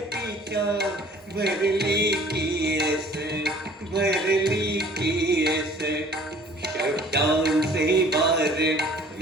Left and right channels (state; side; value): normal; both; correlation 0.52